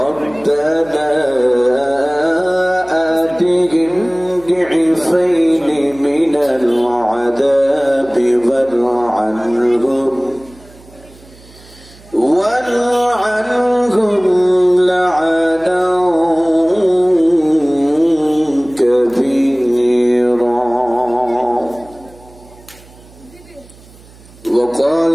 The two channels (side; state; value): right; noise; hum, 24 dB below the sound